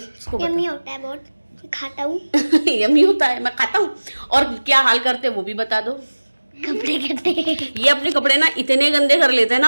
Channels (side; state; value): both; inverted; correlation -1.00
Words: इसको यम्मी होता है बहुत, खाता हूँ यम्मी होता है, मैं खाता हूँ। और क्या हाल करते हैं वो भी बता दो। कपड़े करते हैं ये अपने कपड़े ना इतने गंदे कर लेते हैं ना,